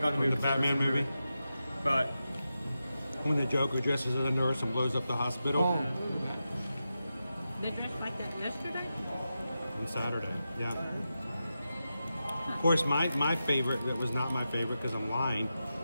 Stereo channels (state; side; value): inverted; both; correlation -0.90